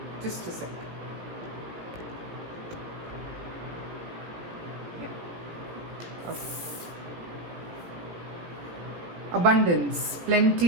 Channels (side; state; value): left; late; 17 ms